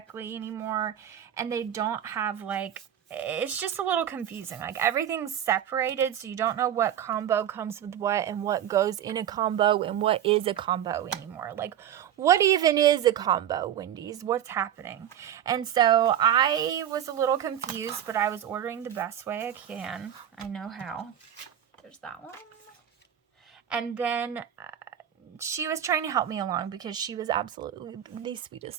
anymore. And they don't have, like, it's just a little confusing. Like, everything's separated, so you don't know what combo comes with what and what goes in a combo and what is a combo anymore. Like, what even is a combo, Wendy's? What's happening? And so I was a little confused, but I was ordering the best way I can. I know how. There's that one. And then she was trying to help me along because she was absolutely the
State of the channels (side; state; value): left; quieter; 10.2 dB